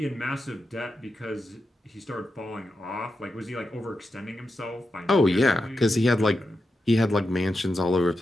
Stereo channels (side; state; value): both; normal; correlation 0.88